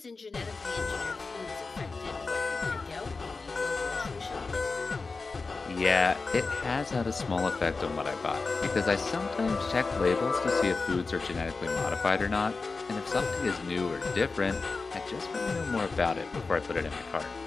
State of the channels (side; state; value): right; quieter; 4.1 dB